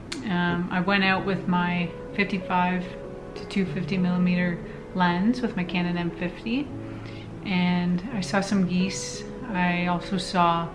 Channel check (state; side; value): identical; both; correlation 1.00